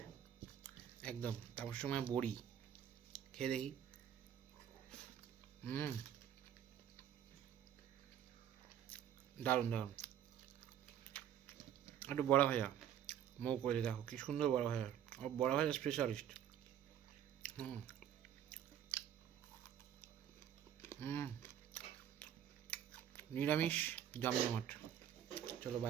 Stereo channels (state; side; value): quieter; left; 10.1 dB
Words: একদম। তারপর সময় বড়ি খেয়ে দেখি। দারুণ দারুণ। একটু বড়া ভাজা মৌ করে, দেখো কি সুন্দর বড়া ভাজা, বড়া ভাজা স্পেশালিস্ট। নিরামিষ জমজমাট। চলো